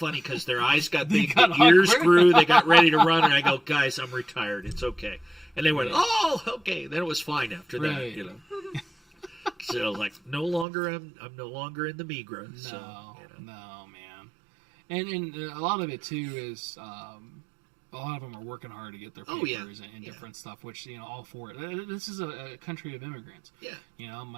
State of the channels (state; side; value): drops out; left; at 10.7 s